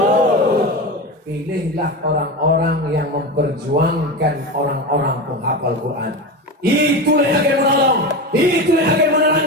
Pilihlah orang-orang yang memperjuangkan orang-orang penghafal Quran. Itulah yang akan menolong, itulah yang akan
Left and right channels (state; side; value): normal; both; correlation 0.22